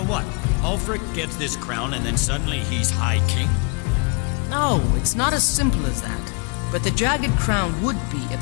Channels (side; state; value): right; quieter; 34.4 dB